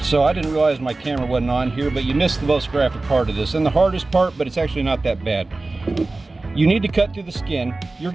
I didn't realize my camera wasn't on here, but you missed the most graphic part of this, and the hardest part, but it's actually not that bad. You need to cut through the skin. You're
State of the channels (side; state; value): left; quieter; 3.2 dB